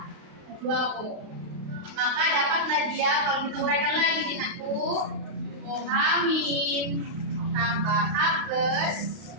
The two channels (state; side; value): late; left; 32 ms